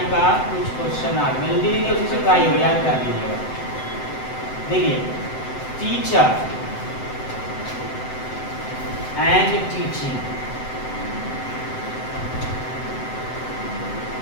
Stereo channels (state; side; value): late; right; 7.8 ms